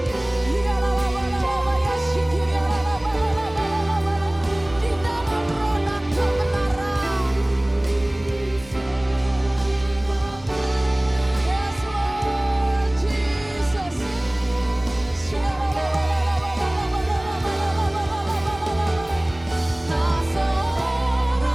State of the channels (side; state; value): right; noise; rumble, 20 dB below the sound